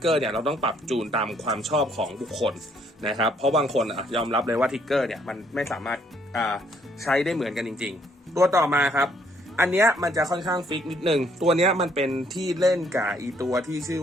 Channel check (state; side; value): normal; both; correlation 0.66